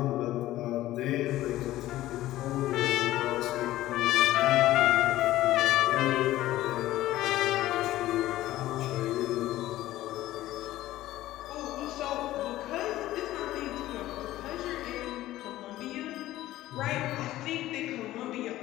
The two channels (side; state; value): right; quieter; 15.3 dB